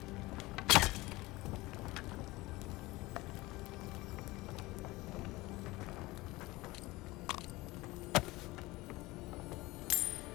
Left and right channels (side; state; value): right; quieter; 20.6 dB